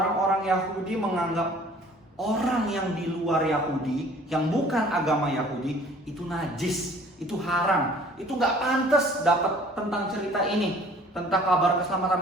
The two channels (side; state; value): both; normal; correlation 0.52